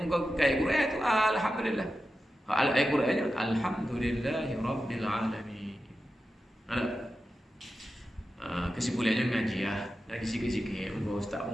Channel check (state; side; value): normal; both; correlation 0.91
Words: Muka ayat Quran tu alhamdulillah. Ayat Qurannya alhamdulillahirabbil alamin. Ada kesimpulannya ngaji lagi sikit-sikit. Muka ustaz